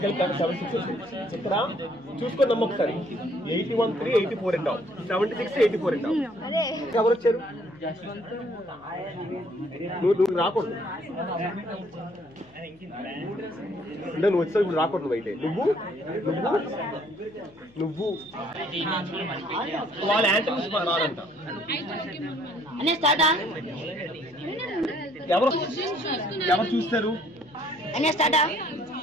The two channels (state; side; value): noise; left; hum, 28 dB below the sound